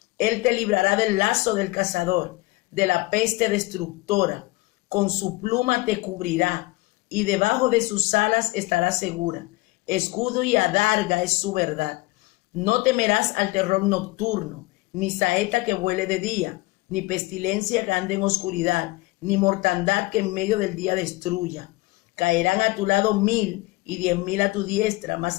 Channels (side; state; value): right; quieter; 21.7 dB